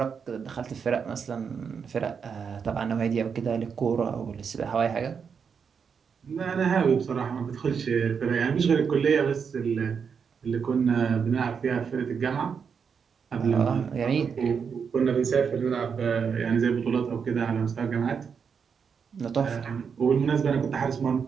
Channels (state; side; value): quieter; left; 6.4 dB